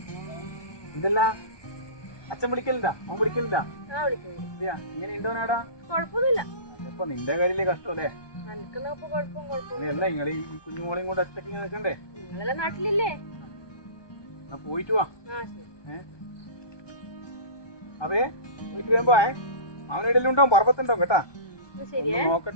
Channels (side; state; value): right; late; 1.2 ms